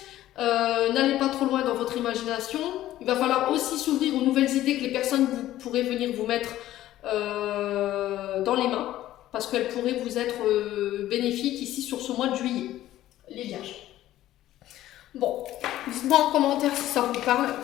N'allez pas trop loin dans votre imagination. Il va falloir aussi s'ouvrir aux nouvelles idées que les personnes pourraient venir vous mettre dans les mains, parce qu'elles pourraient vous être bénéfiques ici sur ce mois de juillet, les vierges. Bon, dites-moi en commentaire si ça vous parle.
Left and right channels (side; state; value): right; quieter; 14.0 dB